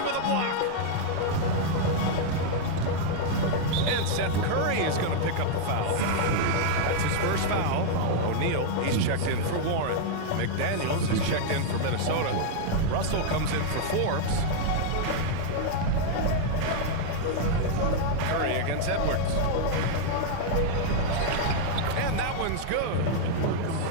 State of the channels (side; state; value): both; different; correlation -0.01